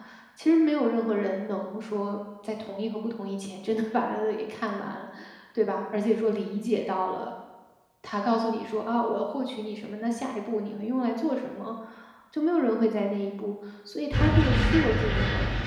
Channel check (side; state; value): both; identical; correlation 1.00